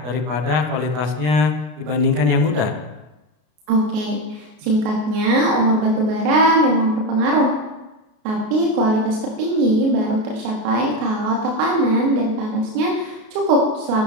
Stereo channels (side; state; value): left; late; 33 ms